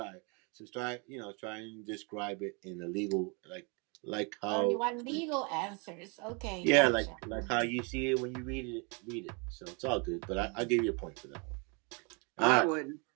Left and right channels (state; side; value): quieter; left; 33.0 dB